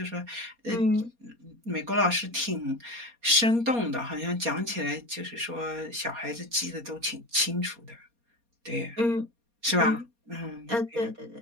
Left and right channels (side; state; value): left; late; 4.2 ms